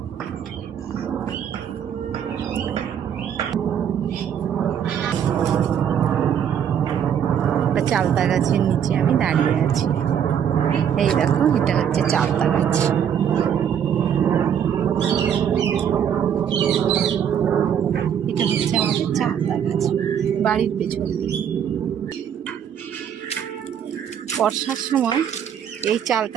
চালতা গাছের নিচে আমি দাঁড়িয়ে আছি। এই দেখো, এটা হচ্ছে চালতা গাছ। এটা হচ্ছে আমাদের চালতা গাছ, বাড়ির পেছন দিকে। বর্ষার সময় এই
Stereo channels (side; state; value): left; quieter; 8.7 dB